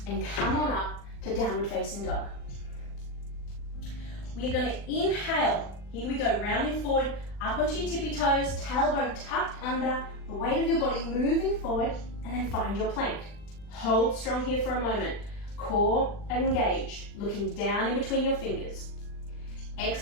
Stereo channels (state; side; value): late; right; 40 ms